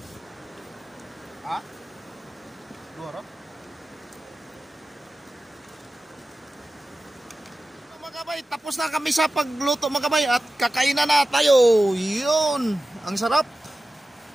Ha? Duro? Mga kabay, tapos na kami sa pagluto mga kabay. At kakainan na tayo. Yun. Ang sarap.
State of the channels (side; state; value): both; normal; correlation 0.95